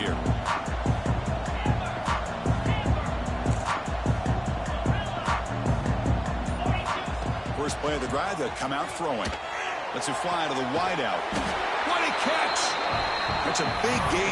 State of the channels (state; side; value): identical; both; correlation 1.00